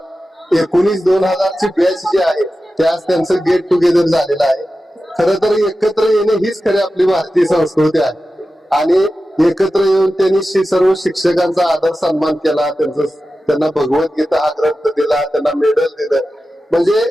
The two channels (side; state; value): both; normal; correlation 0.93